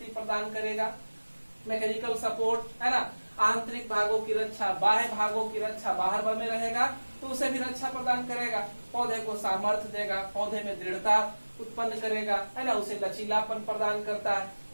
प्रदान करेगा, मैकेनिकल सपोर्ट, है ना। आंतरिक भागों की रक्षा, बाह्य भागों की रक्षा, बाहर में रहेगा तो उसे भी रक्षा प्रदान करेगा। पौधे को सामर्थ्य देगा, पौधे में दृढ़ता उत्पन्न करेगा, है ना, उसे लचीलापन प्रदान करता है।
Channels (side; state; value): both; inverted; correlation -1.00